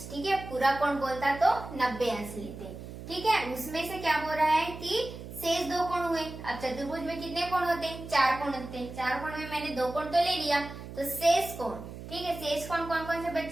ठीक है, पूरा कोण बोलता तो 90 अंश लेते। ठीक है, उसमें से क्या बोल रहा है कि शेष दो कोण हुए। अब चतुर्भुज में कितने कोण होते हैं, 4 कोण होते हैं। 4 कोण में मैंने 2 कोण तो ले लिया, तो शेष कोण, ठीक है, शेष कोण कौन कौन से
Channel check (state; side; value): noise; right; hum, 12 dB below the sound